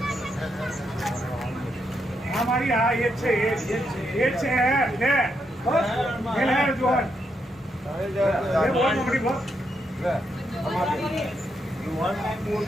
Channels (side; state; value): both; normal; correlation 0.80